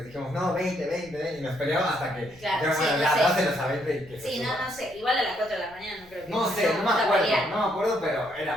dijimos, no, 20, y nos peleamos hasta que claro, sí, ya dáselos a 20 y que se sí, suba. no sé, igual a las 4 de la mañana no creo que... No sé, no me acuerdo, pero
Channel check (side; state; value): left; noise; rumble, 24 dB below the sound